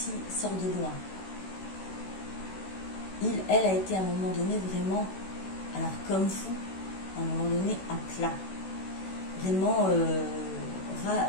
loin. Elle a été à un moment donné vraiment, alors comme vous, à un moment donné à plat. Vraiment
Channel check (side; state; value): right; late; 16 ms